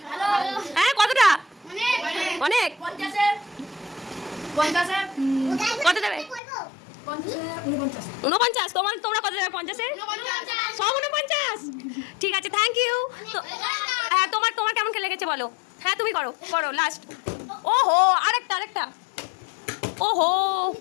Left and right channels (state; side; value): drops out; right; at 6.4 s